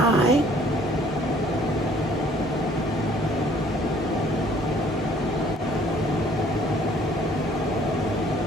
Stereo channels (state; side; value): normal; both; correlation 0.58